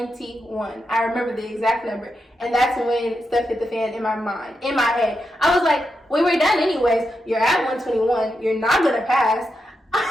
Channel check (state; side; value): normal; both; correlation 0.86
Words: I remember the exact number. And that's when stuff hit the fan in my mind, in my head. I was like, we were done anyways. You're at 121. You're not going to pass.